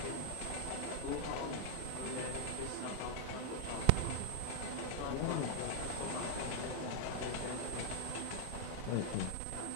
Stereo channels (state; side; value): different; both; correlation -0.01